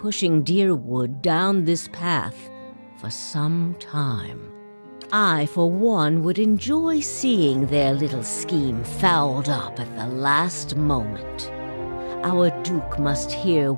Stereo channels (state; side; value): inverted; both; correlation -1.00